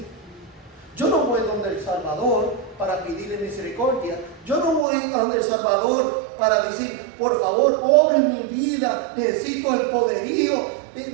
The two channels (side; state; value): left; drops out; at 4.9 s